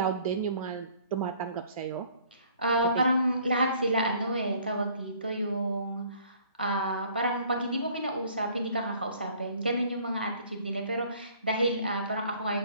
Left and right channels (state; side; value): inverted; both; correlation -0.57